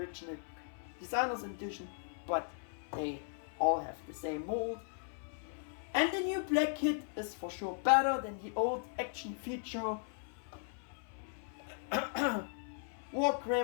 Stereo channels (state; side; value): silent; right; 53 dB below the other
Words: designer's edition, but they all have the same mold. And the new black kit is for sure better than the old action feature